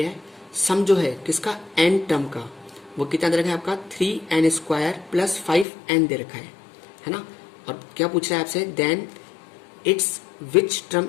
सम जो है किसका, n टर्म का, वो कितना दे रखा है आपका 3n स्क्वायर प्लस 5n दे रखा है ना। और क्या पूछ रहा है आपसे, then it's which term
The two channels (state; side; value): drops out; right; at 5.7 s